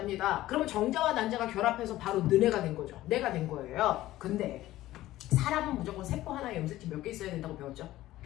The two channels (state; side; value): quieter; right; 15.5 dB